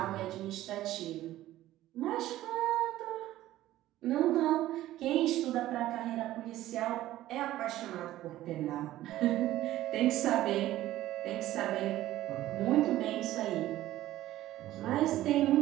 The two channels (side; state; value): left; quieter; 14.7 dB